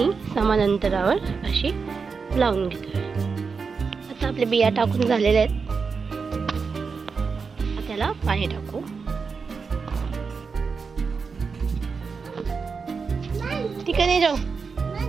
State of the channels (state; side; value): quieter; left; 5.2 dB